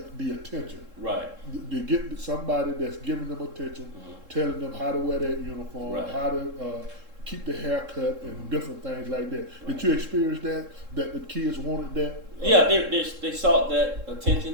the attention. Right. You get somebody that's giving them attention, telling them how to wear that uniform, how to keep the haircut, and different things like that. Did you experience that the kids wanted that? Yeah, they sought that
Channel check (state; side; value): late; left; 3.7 ms